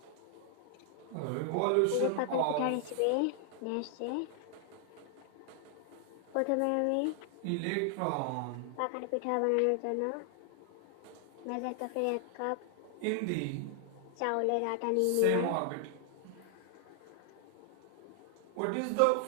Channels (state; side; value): different; both; correlation 0.00